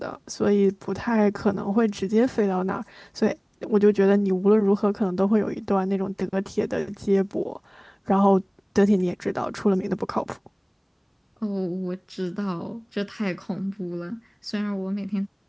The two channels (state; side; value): identical; both; correlation 1.00